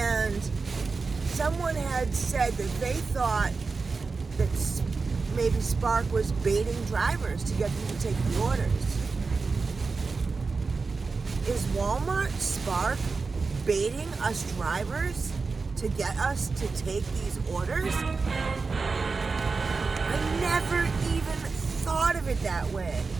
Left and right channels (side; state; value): left; quieter; 4.4 dB